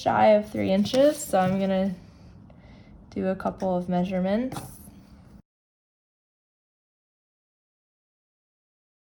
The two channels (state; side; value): identical; both; correlation 1.00